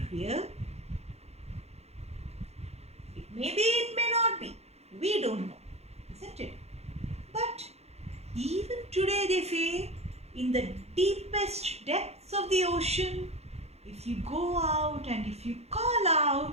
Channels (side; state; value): left; late; 0.31 ms